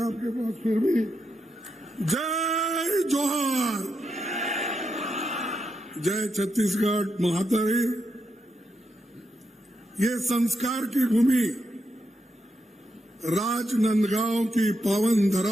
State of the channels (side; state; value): both; normal; correlation 0.84